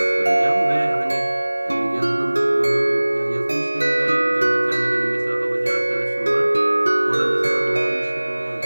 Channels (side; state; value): both; inverted; correlation -1.00